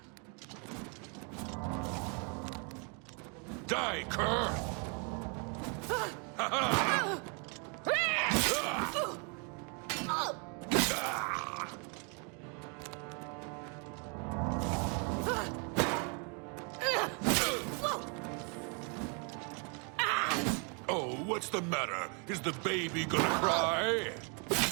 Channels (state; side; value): quieter; left; 36.4 dB